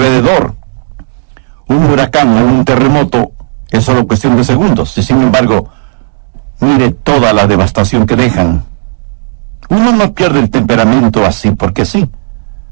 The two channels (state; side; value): silent; left; 57 dB below the other